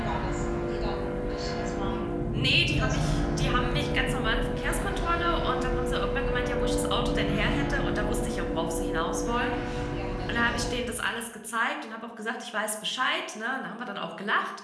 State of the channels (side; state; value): both; identical; correlation 1.00